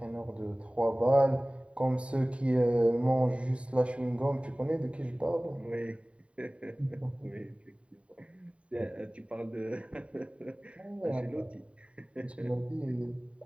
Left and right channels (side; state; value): left; late; 0.062 ms